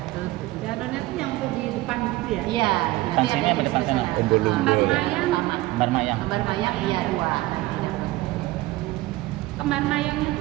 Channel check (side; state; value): left; quieter; 18.5 dB